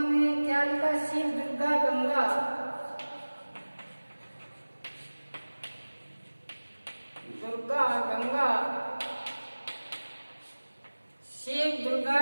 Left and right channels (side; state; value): both; inverted; correlation -1.00